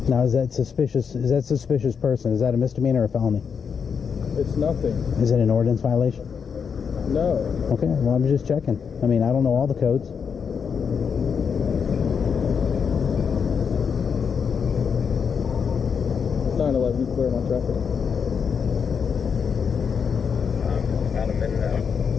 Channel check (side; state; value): right; quieter; 6.5 dB